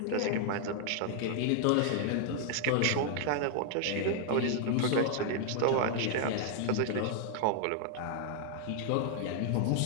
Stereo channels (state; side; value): different; both; correlation 0.00